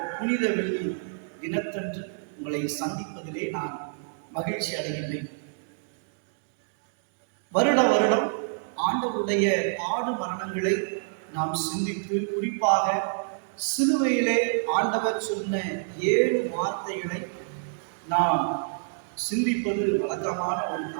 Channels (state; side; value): silent; left; digital silence